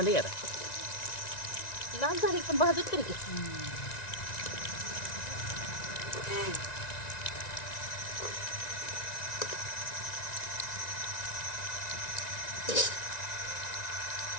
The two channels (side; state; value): right; late; 1.9 ms